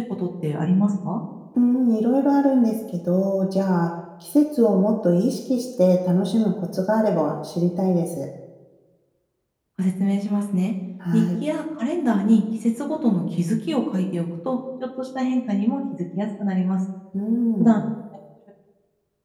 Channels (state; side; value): identical; both; correlation 1.00